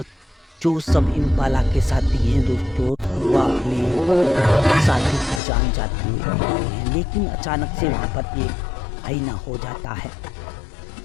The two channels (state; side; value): drops out; right; at 5.4 s